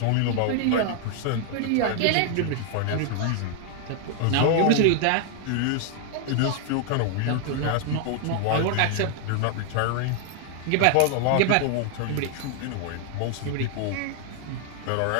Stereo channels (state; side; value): different; both; correlation 0.00